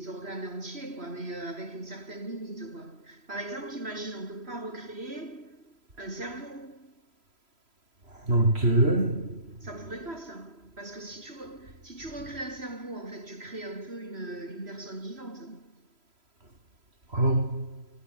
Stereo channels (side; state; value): left; late; 3.0 ms